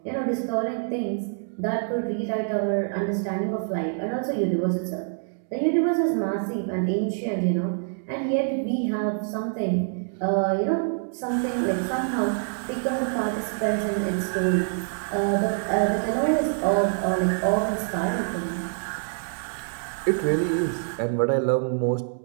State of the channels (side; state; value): left; silent; digital silence